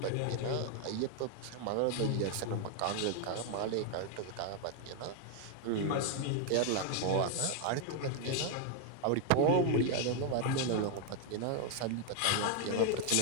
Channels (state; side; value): different; both; correlation 0.01